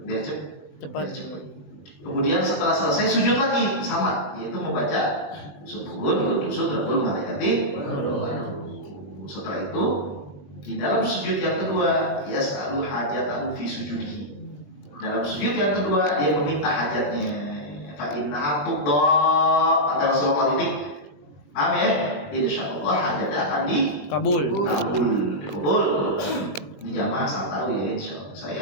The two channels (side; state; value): right; late; 20 ms